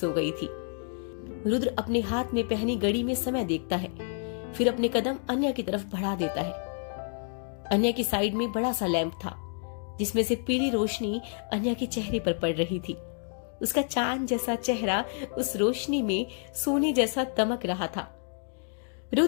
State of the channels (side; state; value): right; silent; 59 dB below the other